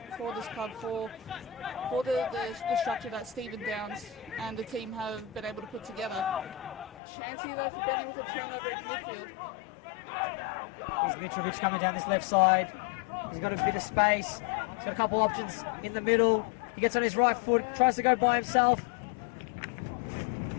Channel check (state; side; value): drops out; right; at 7.0 s